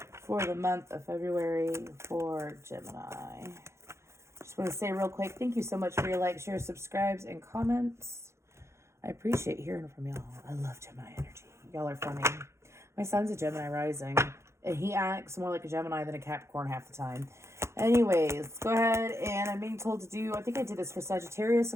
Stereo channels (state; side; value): late; left; 0.13 ms